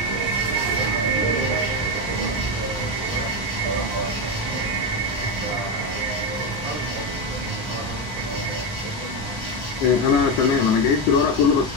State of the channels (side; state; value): both; normal; correlation 0.11